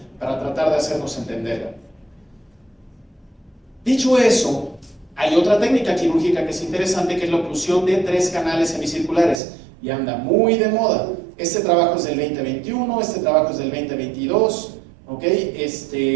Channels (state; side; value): drops out; left; at 9.4 s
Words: para tratar de hacernos entenderla. Dicho eso, hay otra técnica quirúrgica que es interesante, que es la oclusión de 3 canales semicirculares y anda muy de moda. Este trabajo es del 2021, este trabajo es del 2022, ¿ok?